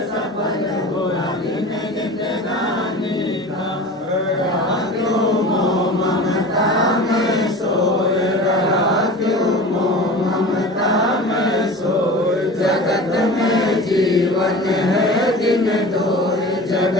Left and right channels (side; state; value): both; normal; correlation 0.36